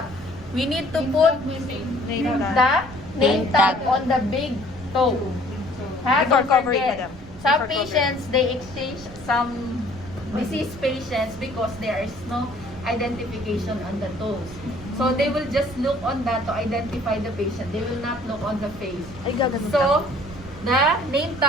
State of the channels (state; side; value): noise; right; rumble, 17 dB below the sound